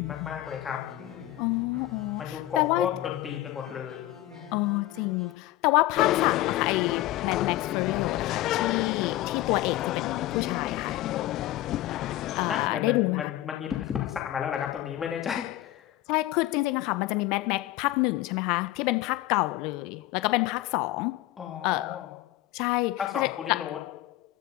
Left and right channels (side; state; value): right; quieter; 15.6 dB